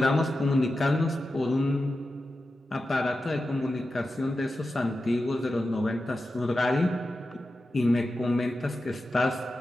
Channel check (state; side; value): normal; both; correlation 0.92